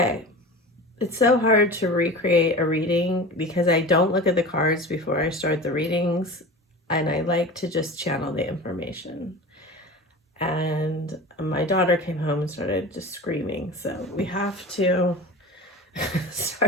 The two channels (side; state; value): both; normal; correlation 0.34